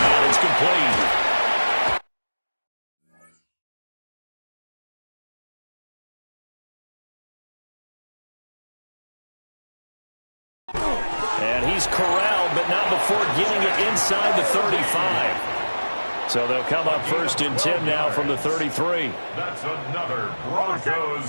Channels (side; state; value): both; inverted; correlation -1.00